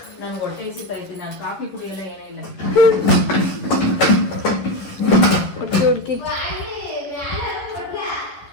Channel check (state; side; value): late; right; 11 ms